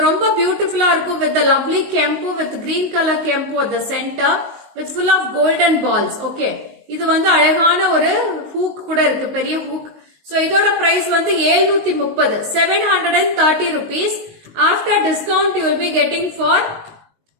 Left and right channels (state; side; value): late; left; 19 ms